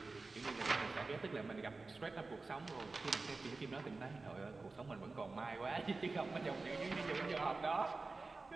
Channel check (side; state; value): left; quieter; 3.7 dB